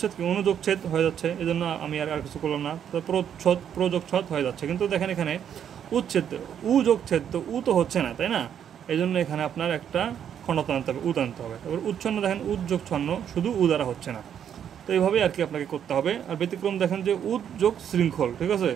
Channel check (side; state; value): left; quieter; 9.0 dB